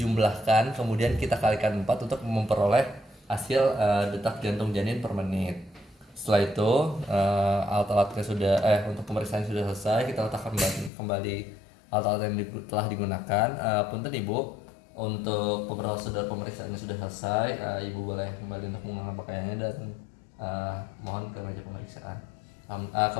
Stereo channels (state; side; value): drops out; right; at 10.9 s